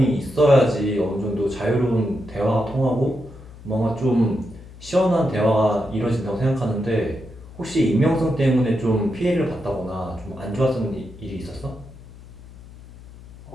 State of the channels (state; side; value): noise; left; hum, 19 dB below the sound